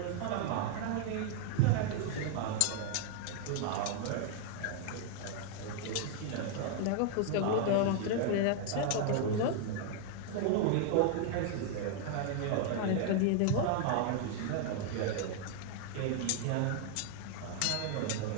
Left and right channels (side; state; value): both; different; correlation 0.00